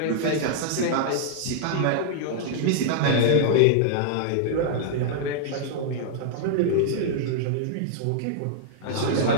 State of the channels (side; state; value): both; different; correlation -0.01